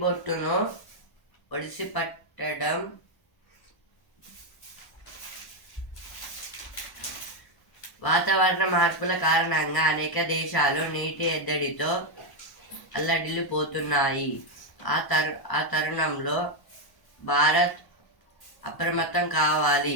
బొట్టును ఒడిసి పట్టడం వాతావరణ మార్పుల కారణంగా అనేక దేశాలు నీటి ఎద్దడితో అల్లడిల్లిపోతున్నాయి. ఆ తరుణంలో భారత్ అప్రమత్తం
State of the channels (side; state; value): right; late; 1.0 ms